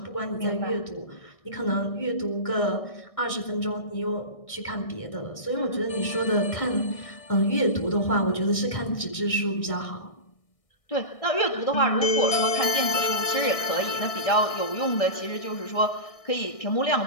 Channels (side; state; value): right; late; 1.6 ms